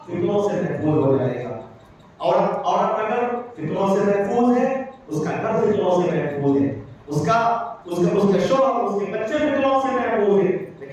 فتنوں سے محفوظ ہو جائے گا. عورت اگر فتنوں سے محفوظ ہے، اس کا گھر فتنوں سے محفوظ ہے، اس کا شوہر، اس کے بچے فتنوں سے محفوظ ہیں.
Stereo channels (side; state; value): both; identical; correlation 1.00